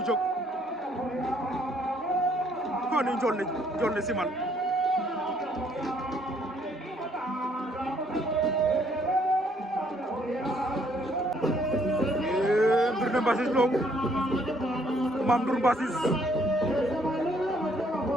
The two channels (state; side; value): normal; both; correlation 0.66